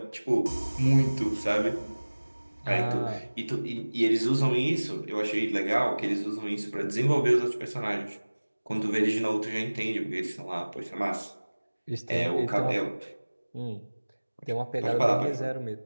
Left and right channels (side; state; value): both; inverted; correlation -1.00